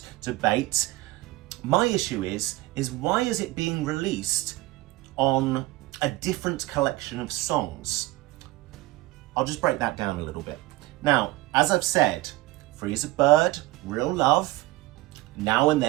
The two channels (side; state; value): left; quieter; 18.6 dB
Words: debate. My issue is why is it being released on a different collection of songs? I'll just break that down a little bit. Now, as I've said, Free as a Bird, Real Love, Now and